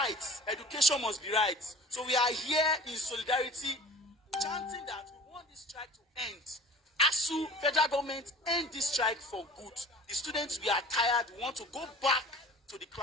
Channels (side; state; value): both; normal; correlation 0.43